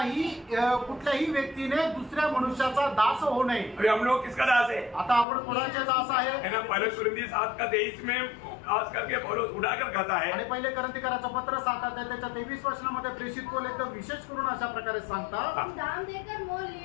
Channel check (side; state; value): right; drops out; at 5.2 s